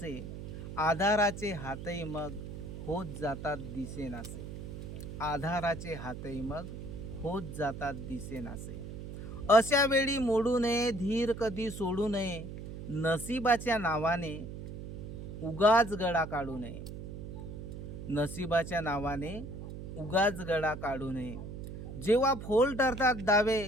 आधाराचे हातही मग होत जातात दिसेनासे. आधाराचे हातही मग होत जातात दिसेनासे. अशा वेळी मोडू नये धीर कधी सोडू नये. नशिबाच्या नावाने उगाच गळा काढू नये. नशिबाच्या नावाने उगाच गळा काढू नये. जेव्हा फोल ठरतात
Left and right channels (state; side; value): noise; right; hum, 9 dB below the sound